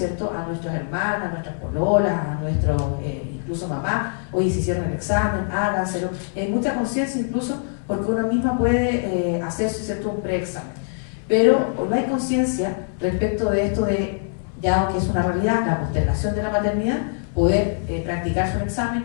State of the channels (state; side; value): silent; right; 63 dB below the other